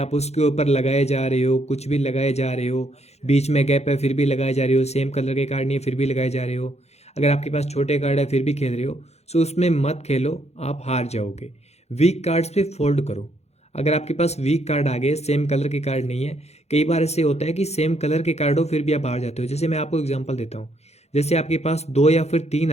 उसके ऊपर लगाए जा रहे हो, कुछ भी लगाए जा रहे हो, बीच में गैप है फिर भी लगाए जा रहे हो, सेम कलर के कार्ड नहीं है फिर भी लगाए जा रहे हो, अगर आपके पास छोटे कार्ड है फिर भी खेल रहे हो, सो उसमें मत खेलो, आप हार जाओगे। वीक कार्ड्स पे फोल्ड करो। अगर आपके पास वीक कार्ड आ गए, सेम कलर के कार्ड नहीं है, कई बार ऐसे होता है कि सेम कलर के कार्ड हो फिर भी आप हार जाते हो। जैसे मैं आपको एग्जांपल देता हूँ, जैसे आपके पास 2 या फिर 3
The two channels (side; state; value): right; late; 0.31 ms